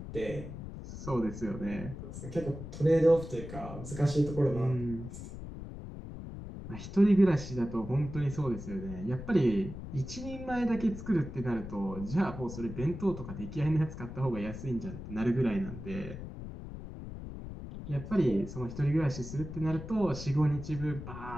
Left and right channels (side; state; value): left; noise; rumble, 10 dB below the sound